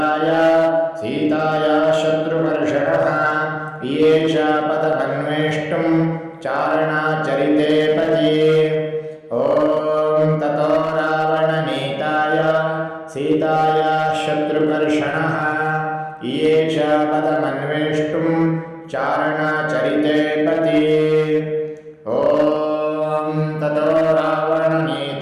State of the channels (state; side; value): identical; both; correlation 1.00